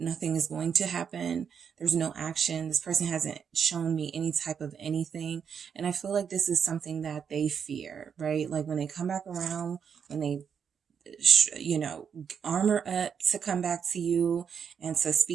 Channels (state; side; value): quieter; left; 7.2 dB